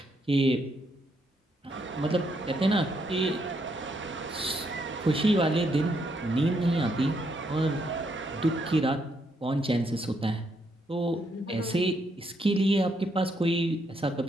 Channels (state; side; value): normal; both; correlation 0.76